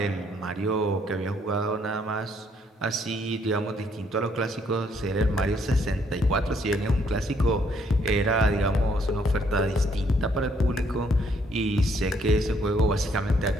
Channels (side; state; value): both; normal; correlation 0.69